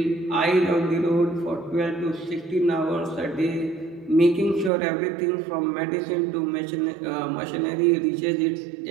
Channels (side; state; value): left; drops out; at 4.7 s